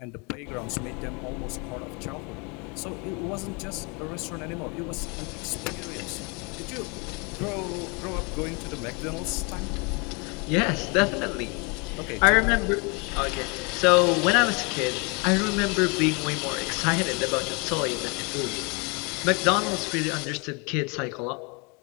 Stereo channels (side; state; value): right; quieter; 31.2 dB